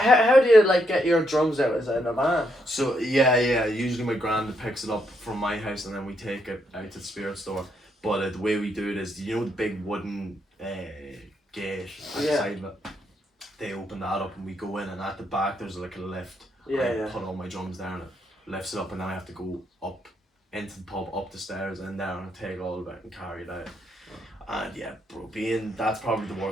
do you like get your drums out? Is it in a van? So yeah. Usually my granddad picks it up from my house, and then we take it out to the spirit store. But the way we do it is, you know, the big wooden gate at the Yeah. side of it. They open that up, and we go in, and at the back there's like a lift. Yeah, I yeah. put all my drums there, and it lifts it up, and then I have to go up into the pub, up the stairs, and down, and take all of it and carry it out. And yeah, bro, that's probably the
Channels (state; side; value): normal; both; correlation 0.77